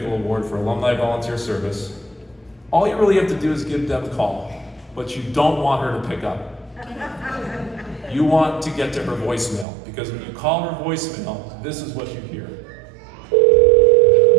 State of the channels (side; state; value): left; drops out; at 9.7 s